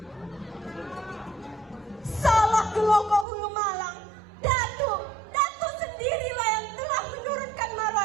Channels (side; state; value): left; drops out; at 3.2 s